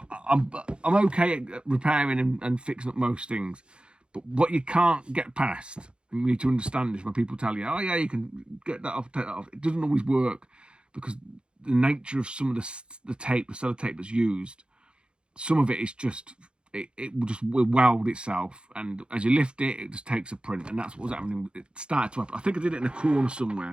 okay at repairing and fixing up most things. But what you can't get past, and you need to understand this when people tell you, oh yeah, you can get that off, take that off. It doesn't always work because the nature of some of the tape, the sellotape that's used, some of it is just, it will weld itself, and as you lift it, it just takes a print, and that's what was happening. It started to happen. I think I did it in a corner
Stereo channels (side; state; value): left; late; 0.054 ms